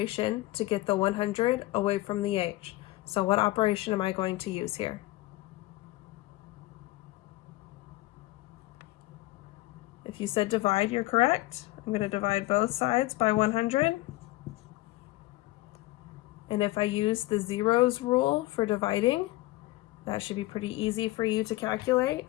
to get the 100 away from the h. So what operation am I going to use here? If you said divide, you're correct. I'm going to divide both sides by 100. And if I use the zeros rule for dividing, that should be pretty easy for you to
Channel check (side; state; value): right; quieter; 18.9 dB